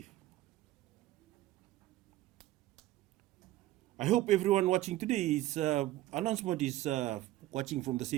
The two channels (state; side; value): quieter; left; 15.6 dB